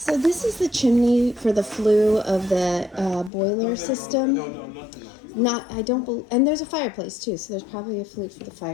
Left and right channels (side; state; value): right; drops out; at 3.3 s